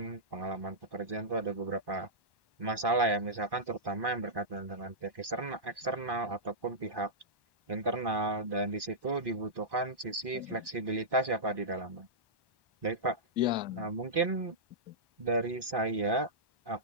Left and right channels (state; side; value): late; left; 1.1 ms